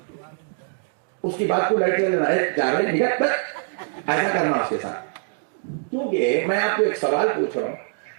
اس کی بات کو لائٹ لینا ہے، ایسا کرنا اس کے ساتھ۔ کیونکہ میں آپ کو ایک سوال پوچھ رہا ہوں،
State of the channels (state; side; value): silent; left; digital silence